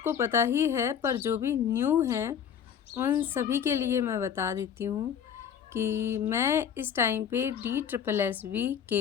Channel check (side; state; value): right; quieter; 8.2 dB